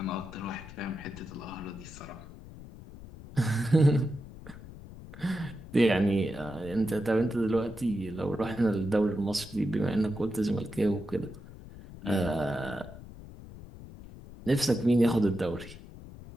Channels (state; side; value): noise; left; rumble, 16 dB below the sound